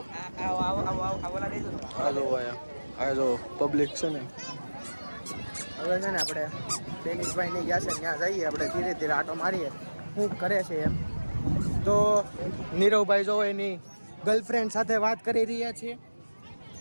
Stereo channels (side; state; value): both; inverted; correlation -1.00